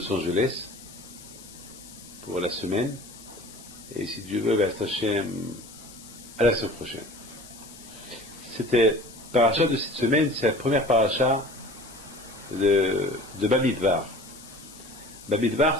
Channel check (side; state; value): left; noise; hiss, 18 dB below the sound